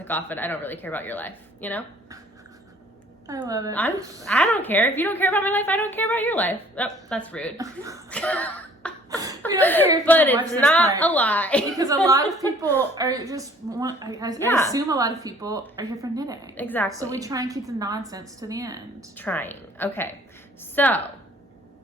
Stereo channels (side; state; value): both; normal; correlation 0.55